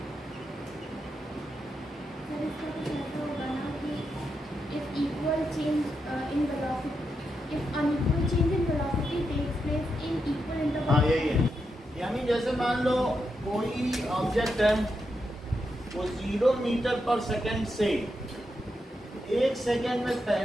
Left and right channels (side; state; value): both; normal; correlation 0.85